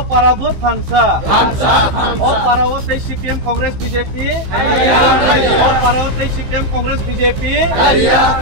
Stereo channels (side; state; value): left; late; 15 ms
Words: Parabut Thansa O Parawote CPM Congress BJP O Parawote CPM Congress BJP